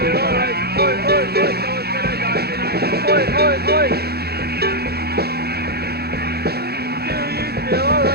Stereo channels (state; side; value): late; left; 0.46 ms